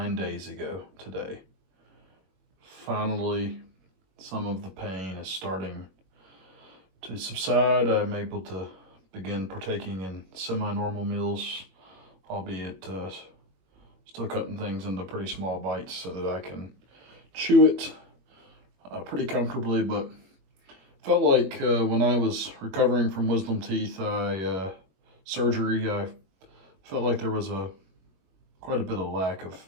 days ago today. Finally, some of the pain is starting to subside. I'm able to begin partaking in semi-normal meals, albeit still cutting things into pretty small bites so that I can chew it pretty comfortably, but felt like when I was recovering from wisdom teeth surgery, I felt like there was quite a bit of lack of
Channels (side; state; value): left; late; 21 ms